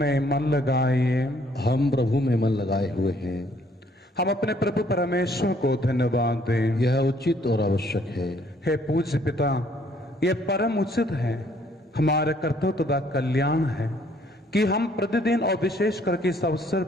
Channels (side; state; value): both; normal; correlation 0.63